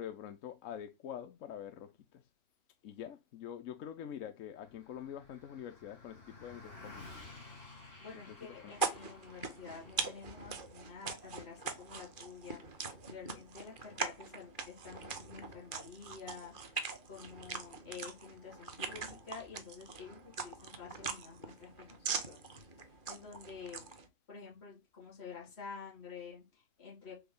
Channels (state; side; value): late; right; 2.5 ms